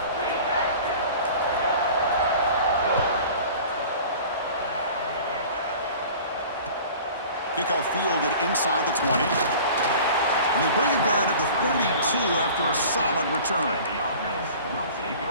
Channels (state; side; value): inverted; both; correlation -0.43